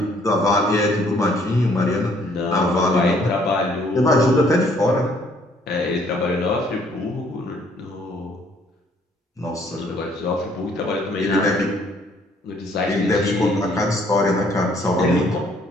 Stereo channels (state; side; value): normal; both; correlation 0.63